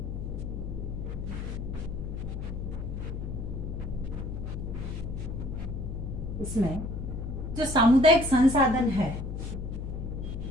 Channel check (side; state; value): left; noise; hum, 5 dB below the sound